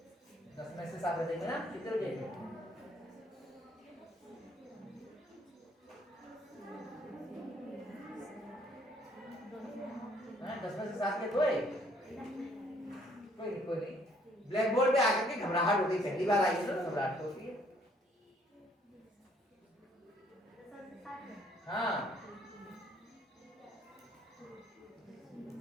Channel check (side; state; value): both; normal; correlation 0.64